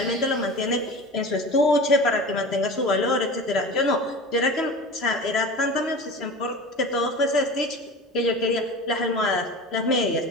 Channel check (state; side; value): normal; both; correlation 0.34